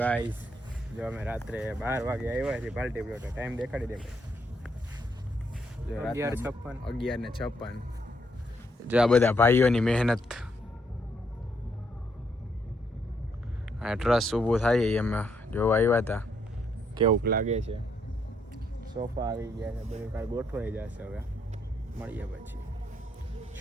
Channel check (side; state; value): both; normal; correlation 0.74